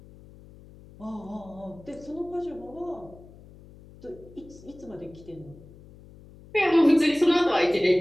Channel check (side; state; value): left; noise; hum, 21 dB below the sound